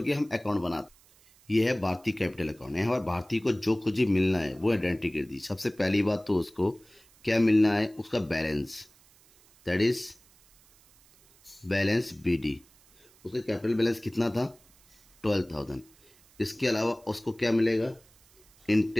के हम अकाउंट बनाते। ये है भारतीय कैपिटल अकाउंट। यहाँ पर भारतीय को जो कुछ भी मिलना है वो एंट्री कर दी। सबसे पहली बात तो उसको क्या मिलना है, उसका balance, that is balance BD. उसका कैपिटल बैलेंस कितना था, 12,000। इसके अलावा उसको क्या मिलेगा,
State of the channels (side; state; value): right; noise; hiss, 29 dB below the sound